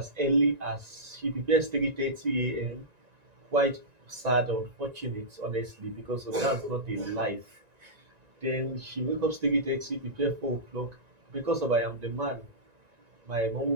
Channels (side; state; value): left; late; 1.9 ms